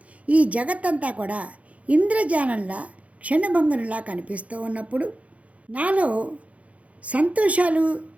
ఈ జగత్తంతా కూడా ఇంద్రజాలంలా క్షణభంగునిలా కనిపిస్తూ ఉన్నప్పుడు నాలో సంతోషాలు,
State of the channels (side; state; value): left; late; 0.066 ms